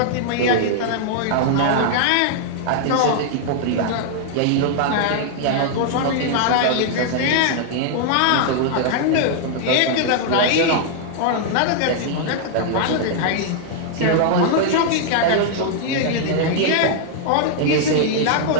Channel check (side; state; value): both; different; correlation -0.01